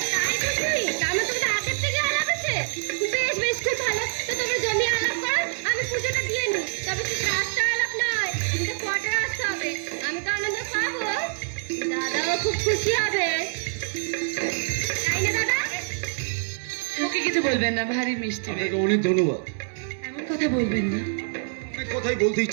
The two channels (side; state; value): left; silent; digital silence